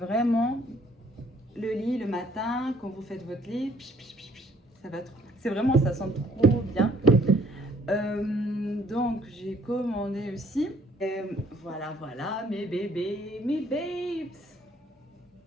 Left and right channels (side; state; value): both; normal; correlation 0.62